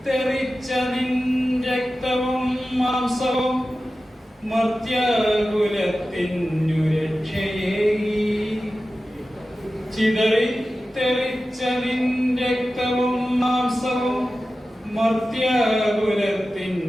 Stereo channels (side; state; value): both; normal; correlation 0.94